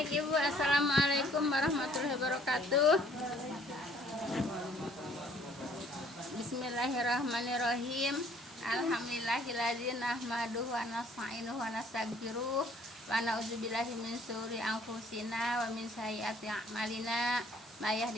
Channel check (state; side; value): normal; both; correlation 0.59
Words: Ibu, Assalamualaikum warahmatullahi wabarakatuh. Bismillahirrahmanirrahim. Alhamdulillahilladzi nahmaduhu wa nasta'inuhu wa nastaghfiruh wa na'udzubillahi min syururi anfusina wa min sayyiati a'malina. May